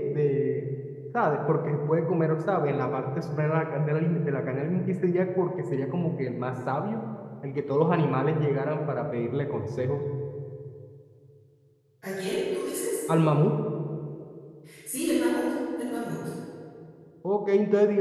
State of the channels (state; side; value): identical; both; correlation 1.00